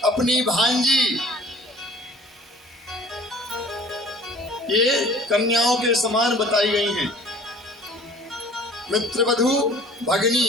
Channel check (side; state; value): both; normal; correlation 0.49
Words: अपनी भांजी, ये कन्याओं के समान बताई गई हैं। मित्र वधू भगनी